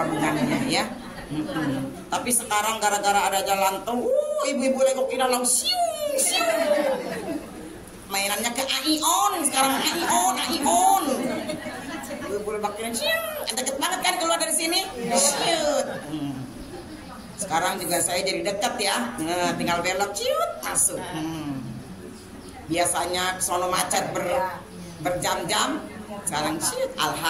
ya. Tapi sekarang gara-gara ada jalan tol, ibu-ibu Legok Indah langsung mainannya ke Aion sekarang, Aion. Boleh bakiran deket banget kan keluar dari sini. Sekarang juga saya jadi dekat ya, tinggal belok masuk. Biasanya sono macet berjam-jam, sekarang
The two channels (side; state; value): both; identical; correlation 1.00